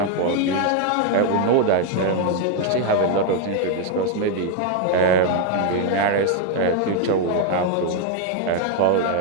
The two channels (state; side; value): different; both; correlation 0.01